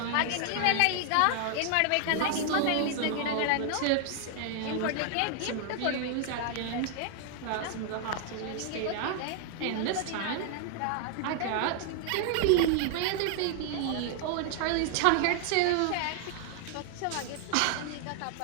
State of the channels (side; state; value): both; different; correlation 0.00